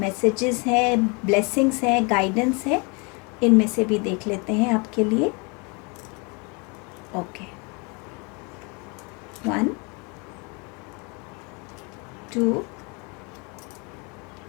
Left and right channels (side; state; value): right; quieter; 31.2 dB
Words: हैं, ब्लेसिंग्स हैं, गाइडेंस है, इनमें से भी देख लेते हैं आपके लिए। ओके, 1 2